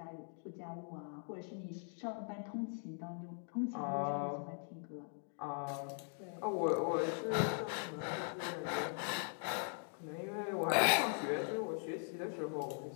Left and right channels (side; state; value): right; silent; 50 dB below the other